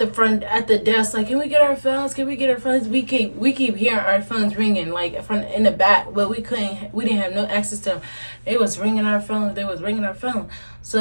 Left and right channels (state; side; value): inverted; both; correlation -1.00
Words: front, at the desk, like, can we get our phones? We keep hearing our phones ringing, like, in the back, but we didn't have no access to them. They was ringing our phones.